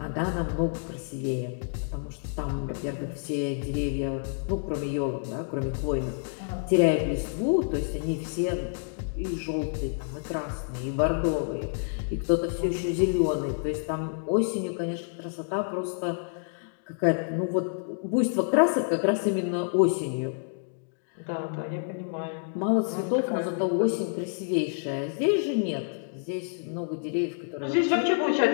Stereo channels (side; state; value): right; silent; digital silence